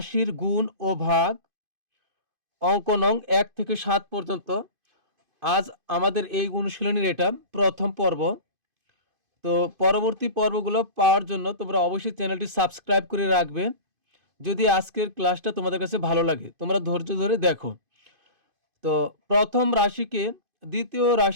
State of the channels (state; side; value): late; left; 2.5 ms